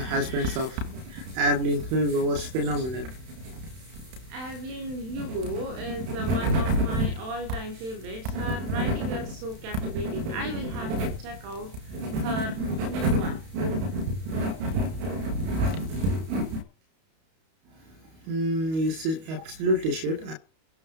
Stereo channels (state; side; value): late; left; 31 ms